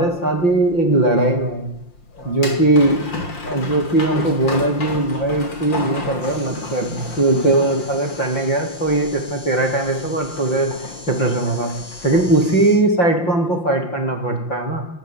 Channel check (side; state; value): right; late; 5.7 ms